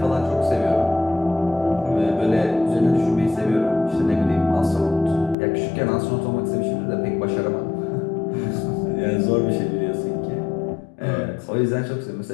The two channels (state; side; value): drops out; right; at 5.4 s